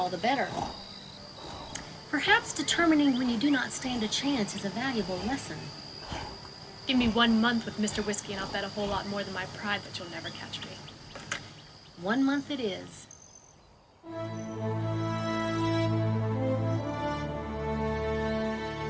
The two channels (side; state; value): both; identical; correlation 1.00